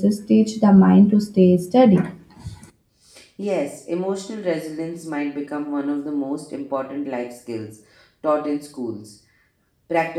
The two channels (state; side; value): identical; both; correlation 1.00